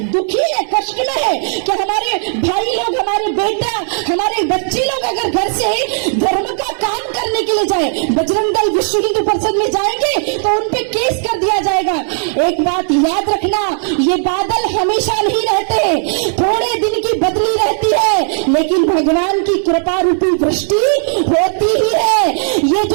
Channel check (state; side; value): silent; left; 57 dB below the other